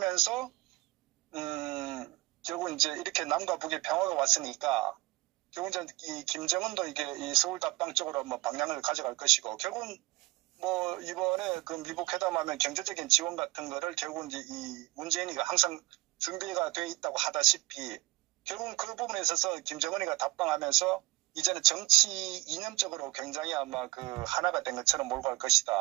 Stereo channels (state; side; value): quieter; left; 20.6 dB